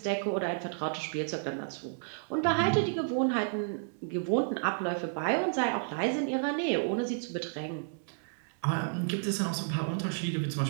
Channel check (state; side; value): silent; left; digital silence